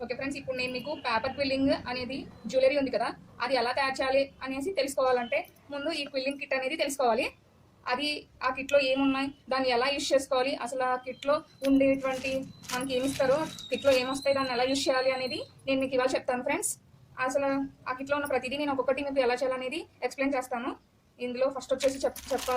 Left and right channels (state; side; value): identical; both; correlation 1.00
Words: Okay friends, ఇప్పుడు నేను మీకు పేపర్ క్విల్లింగ్ అనేది జ్యువెలరీ ఉంది కదా, అది ఎలా తయారు చేయాలి అనేసి తెలుసుకోవాలంటే ముందు ఈ క్విల్లింగ్ కిట్ అనేది తెలుసుకోవాలి. అది ఆ కిట్లో ఏమున్నాయి, దాన్ని ఎలా యూజ్ చేసుకోవాలి, అసలు ఆ కిట్లో ఉండేటువంటి మనకి ఏమి ఇస్తారో, కిట్లో ఏమొస్తాయి, దాన్ని ఎలా యూజ్ చేయాలి అనేది నేను మీకు ఇవాళ చెప్తాను ఫ్రెండ్స్. అసలు ఆ కిట్లో ఉన్న ప్రతిదీ నేను ఒక్కొక్కటి మీకు ఎలా చేయాలనేది ఎక్స్ప్లెయిన్ చేస్తాను. ఇందులో ఫస్ట్ వచ్చేసి